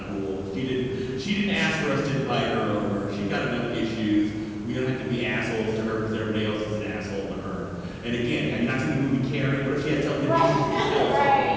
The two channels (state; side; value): identical; both; correlation 1.00